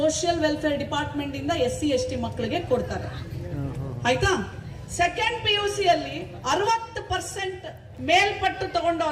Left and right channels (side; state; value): both; identical; correlation 1.00